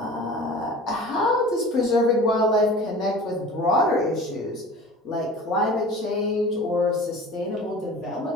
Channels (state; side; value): normal; both; correlation 0.40